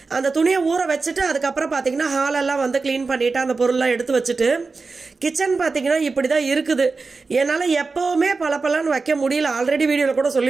அந்த துணியை ஊற வச்சுட்டு அதுக்கப்புறம் பார்த்தீங்கன்னா ஹாலெல்லாம் வந்து க்ளீன் பண்ணிவிட்டு அந்த பொருள்லாம் எடுத்து வச்சுட்டு கிச்சன் பார்த்தீங்கன்னா இப்படி தான் இருக்குது. என்னால் எப்போவுமே பளபளன்னு வைக்க முடியல. ஆல்ரெடி வீடியோவில் கூட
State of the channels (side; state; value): left; quieter; 4.2 dB